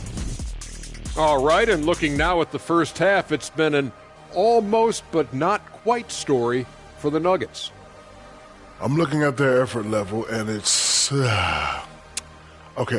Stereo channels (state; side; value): identical; both; correlation 1.00